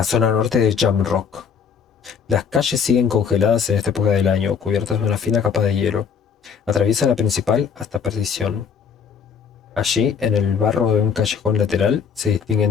zona norte de Jamrock. Las calles siguen congeladas en esta época del año, cubiertas de una fina capa de hielo. Atraviesa la principal hasta perdición. Allí, en el barro de un callejón lateral, se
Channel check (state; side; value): quieter; right; 6.7 dB